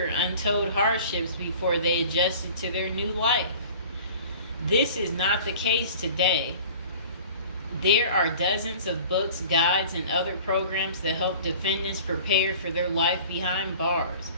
untold hardships before they adjusted to their new life. This is not the case today. There are dozens of books, guides, and other programs that help defendants prepare for their life behind bars.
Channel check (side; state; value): both; inverted; correlation -0.44